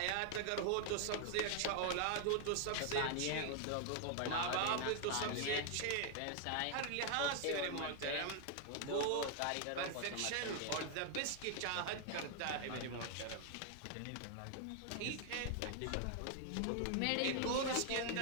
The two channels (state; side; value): different; both; correlation 0.00